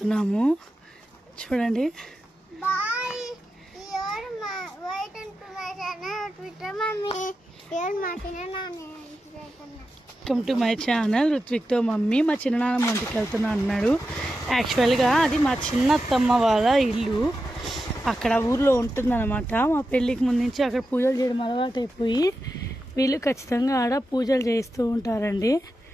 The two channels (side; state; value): both; normal; correlation 0.90